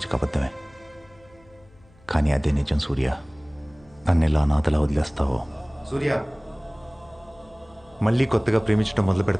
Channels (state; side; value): noise; left; hum, 28 dB below the sound